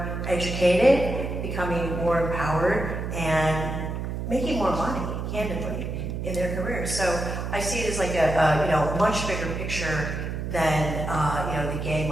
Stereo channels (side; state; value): right; noise; hum, 4 dB below the sound